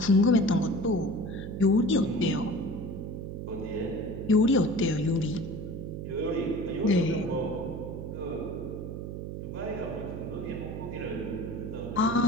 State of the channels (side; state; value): right; noise; hum, 7 dB below the sound